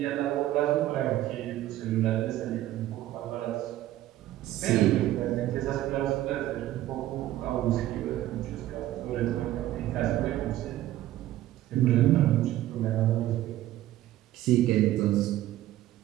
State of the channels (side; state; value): left; quieter; 14.4 dB